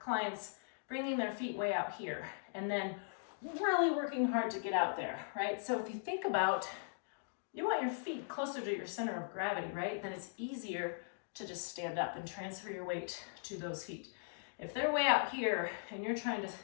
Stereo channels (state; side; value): silent; right; digital silence